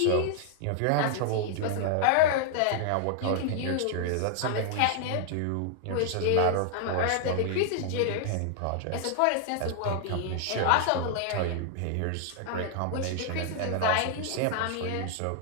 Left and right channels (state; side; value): different; both; correlation 0.00